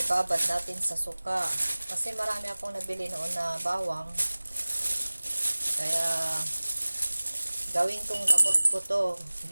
natin sa suka. Kasi marami akong nabili noon na bawang. Kaya gawin kong gamot ko to.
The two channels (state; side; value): inverted; both; correlation -1.00